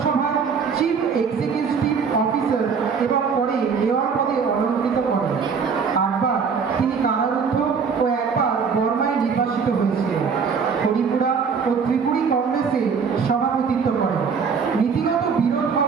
চিফ এক্সিকিউটিভ অফিসার এবং পরে মেয়র পদে অলঙ্কৃত করেন। 8বার তিনি কারারুদ্ধ ও একবার বর্মায় নির্বাসিত হয়েছিলেন। হরিপুরা ও ত্রিপুরী কংগ্রেসে সভাপতিত্ব করেন। নীতিগত বিরোধ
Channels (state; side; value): quieter; left; 5.9 dB